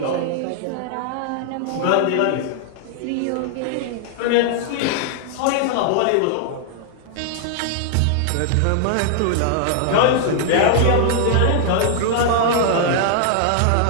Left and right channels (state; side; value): different; both; correlation 0.00